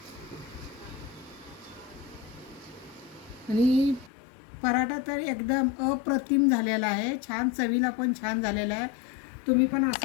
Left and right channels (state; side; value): drops out; right; at 4.1 s